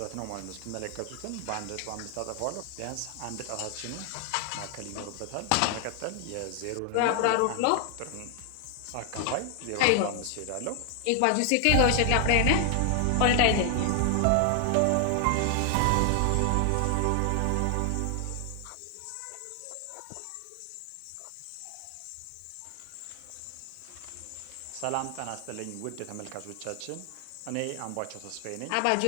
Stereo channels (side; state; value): both; different; correlation 0.00